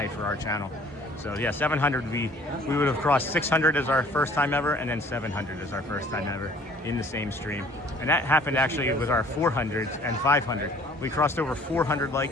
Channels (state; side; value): normal; both; correlation 0.53